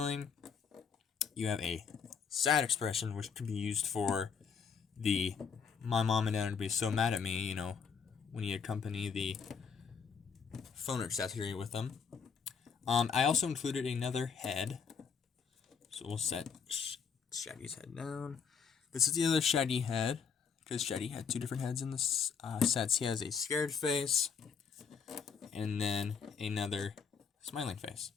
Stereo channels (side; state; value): right; quieter; 6.3 dB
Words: you have a sad expression, which can be used for the my mom and dad would be so mad at me, you know, when you accompany the phone accessory with them. I also included another head, so we'll set Shaggy's head down. This is the other Shaggy head, because Shaggy had two different heads in this sets. He has a scared face, and then another smiling face.